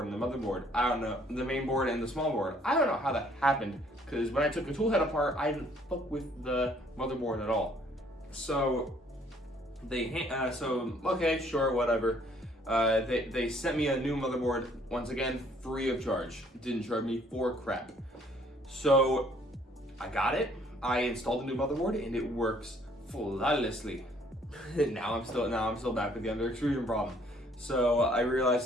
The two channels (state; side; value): normal; both; correlation 0.62